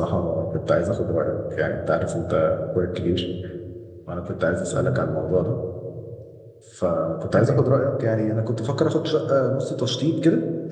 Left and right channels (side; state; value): both; identical; correlation 1.00